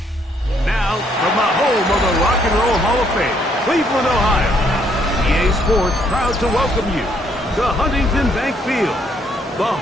Now, from the home of the Rock and Roll Hall of Fame, Cleveland, Ohio, EA Sports proud to welcome you to Huntington Bank Field, the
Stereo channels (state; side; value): normal; both; correlation 0.69